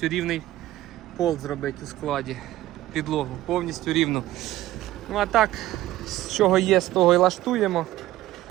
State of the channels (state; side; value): quieter; left; 15.4 dB